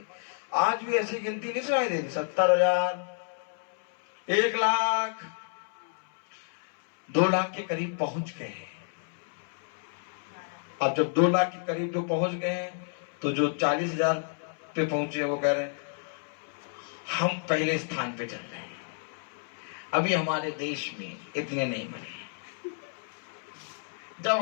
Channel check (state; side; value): silent; right; 58 dB below the other